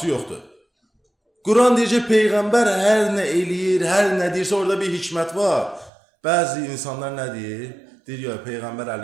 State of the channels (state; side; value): drops out; left; at 5.9 s